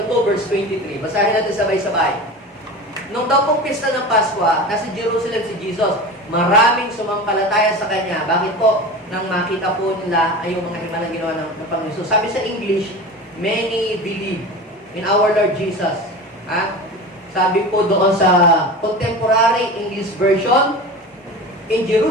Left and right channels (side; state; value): both; normal; correlation 0.31